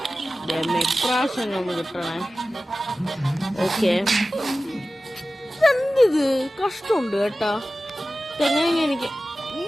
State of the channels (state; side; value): normal; both; correlation 0.95